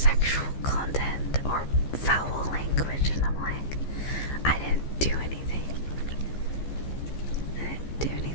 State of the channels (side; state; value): right; late; 15 ms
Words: content or foul language, and I'm like, I didn't do anything. I didn't do